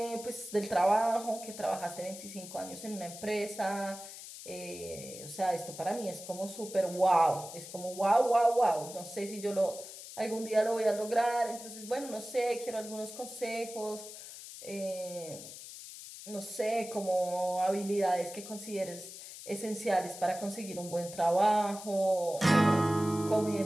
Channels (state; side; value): noise; left; hiss, 13 dB below the sound